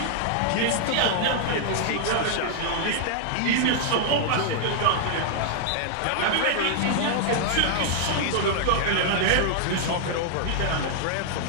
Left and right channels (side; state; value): both; different; correlation 0.00